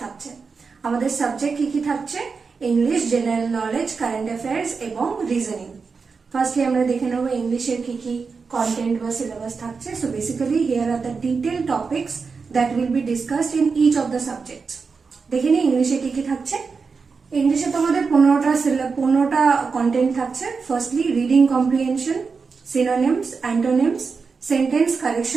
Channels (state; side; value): quieter; left; 5.0 dB